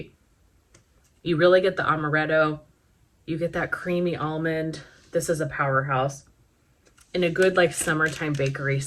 You really get the amaretto. You get that creamy almond. This is a powerhouse. In a good like summertime bakery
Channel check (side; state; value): both; identical; correlation 1.00